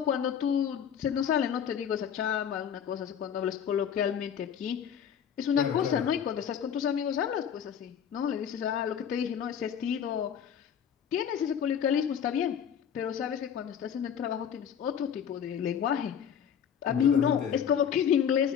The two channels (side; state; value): right; quieter; 8.3 dB